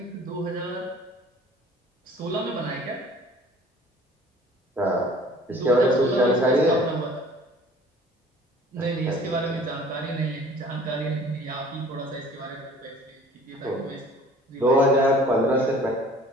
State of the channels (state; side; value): normal; both; correlation 0.50